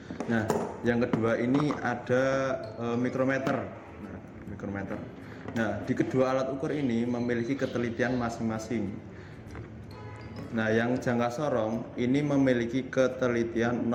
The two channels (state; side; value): identical; both; correlation 1.00